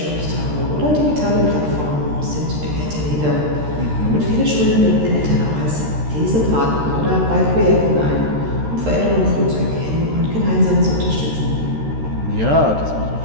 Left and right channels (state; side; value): late; left; 13 ms